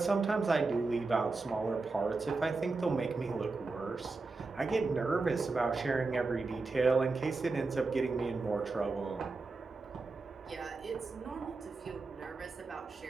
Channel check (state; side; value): quieter; left; 3.8 dB